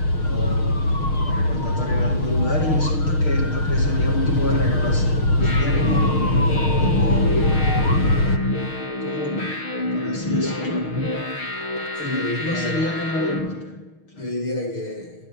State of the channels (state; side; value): late; right; 6.4 ms